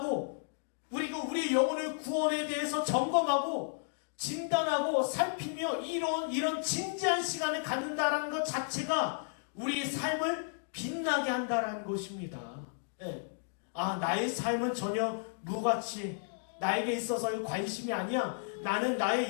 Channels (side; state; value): right; silent; digital silence